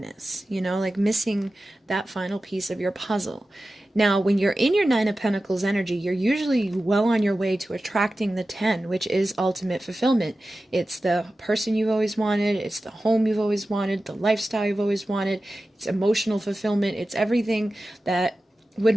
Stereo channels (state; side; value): normal; both; correlation 0.94